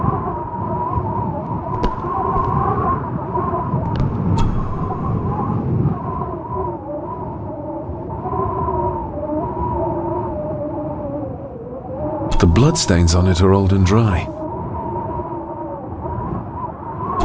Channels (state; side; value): identical; both; correlation 1.00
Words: The bloodstains on it are old and dry.